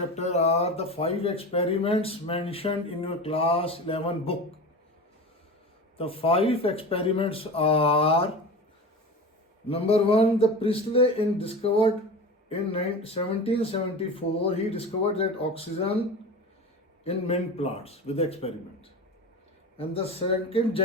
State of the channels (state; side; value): normal; both; correlation 0.30